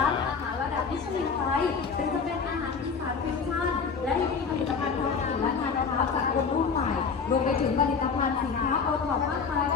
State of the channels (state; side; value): quieter; right; 5.5 dB